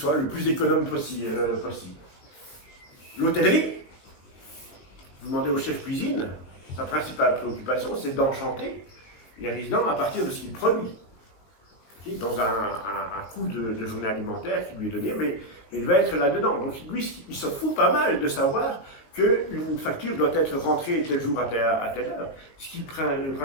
le plus économe possible. L'hôtellerie, vous demandez au chef cuisine, sa principale préoccupation, c'est d'enchanter les résidents à partir de ce qu'il produit. Dans un coût de journée alimentaire qui lui est donné, mais il va être là-dedans. Donc lui, il se fout pas mal de savoir qu'une facture doit être rentrée tel jour à telle heure. Ce qui est le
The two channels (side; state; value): right; late; 19 ms